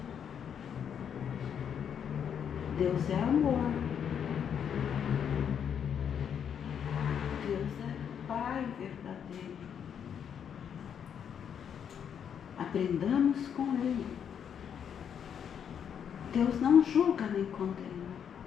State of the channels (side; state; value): right; quieter; 8.1 dB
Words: Deus é amor. Deus é Pai verdadeiro. A Aprendamos com Ele. Deus não julga nem condena.